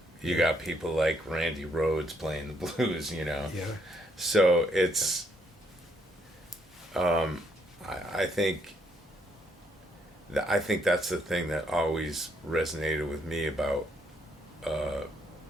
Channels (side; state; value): both; normal; correlation 0.73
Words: you got people like Randy Rhoads playing the blues, you know. Yeah. So it's, I think that's the thing that always resonated with me about